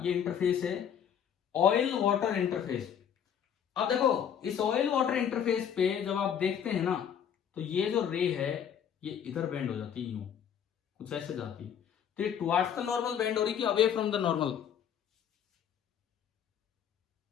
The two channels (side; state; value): right; quieter; 8.6 dB